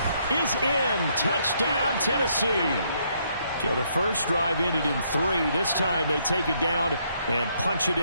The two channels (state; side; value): inverted; both; correlation -0.72